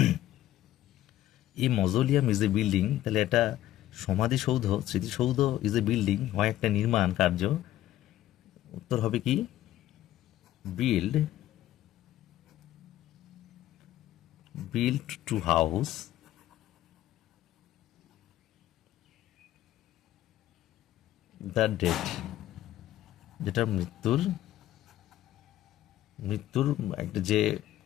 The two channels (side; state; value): right; quieter; 13.7 dB